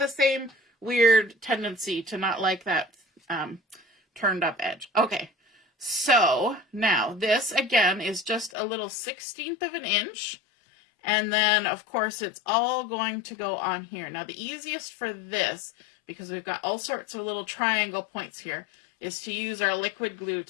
same weird tendency to not like that turned up edge. Okay, So now this again is just a little 1/16 of an inch. And then of course it's all going to go on here. Now the easiest for this, because we've got all sorts of little triangle points here, is to use our liquid glue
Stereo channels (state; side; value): drops out; right; at 8.5 s